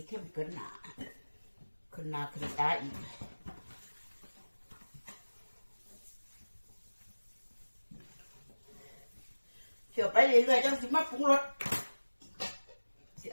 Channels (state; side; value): inverted; both; correlation -1.00